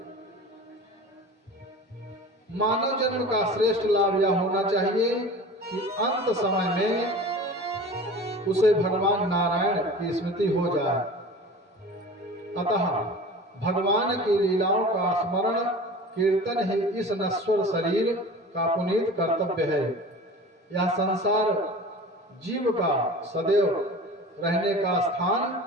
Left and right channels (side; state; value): both; normal; correlation 0.38